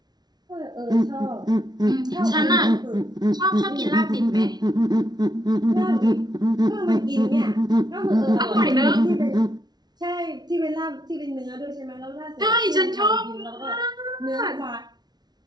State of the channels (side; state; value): left; late; 0.19 ms